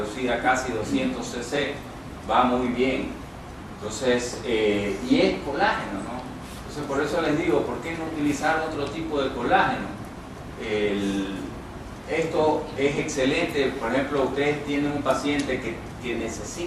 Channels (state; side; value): identical; both; correlation 1.00